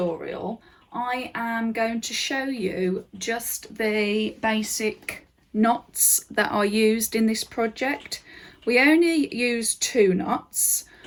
I am going to show you just the basic knots that are used in this project. We only use two knots.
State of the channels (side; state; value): both; identical; correlation 1.00